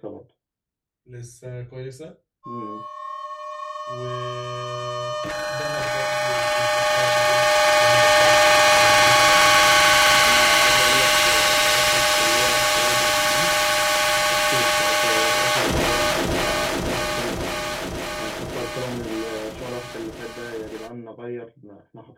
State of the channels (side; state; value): both; identical; correlation 1.00